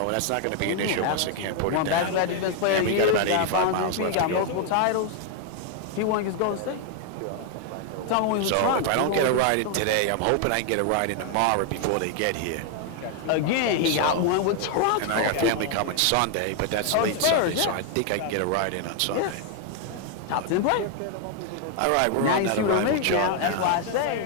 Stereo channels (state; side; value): different; both; correlation 0.00